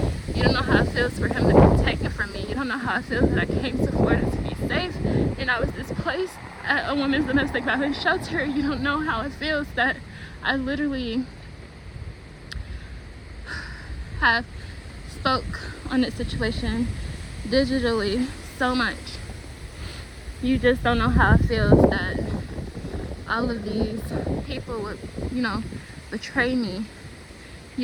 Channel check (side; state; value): both; identical; correlation 1.00